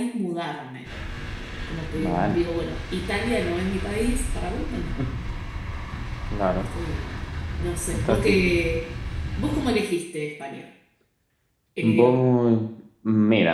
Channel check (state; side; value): identical; both; correlation 1.00